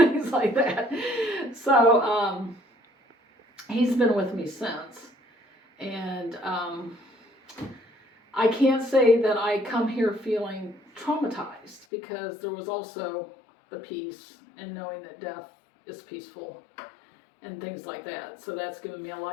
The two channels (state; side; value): drops out; right; at 11.9 s